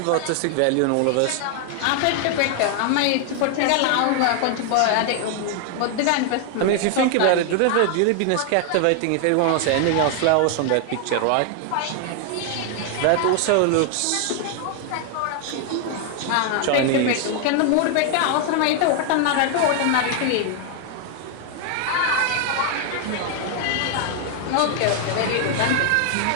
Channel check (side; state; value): both; different; correlation 0.00